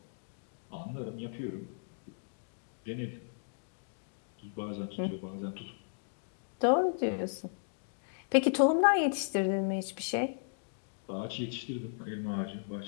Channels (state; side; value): silent; right; digital silence